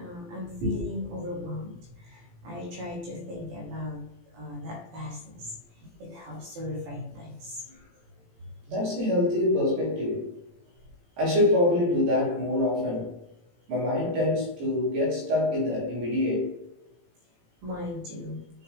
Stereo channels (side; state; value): left; late; 18 ms